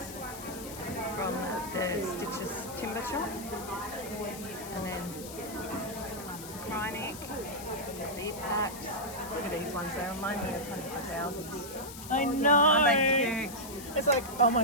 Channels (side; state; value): left; noise; hiss, 13 dB below the sound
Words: from the Stitches timber shop. And then Krynic, bee packs. Look at these ones, they remind me of hundreds of thousands. I know. Aren't they cute? It's like, oh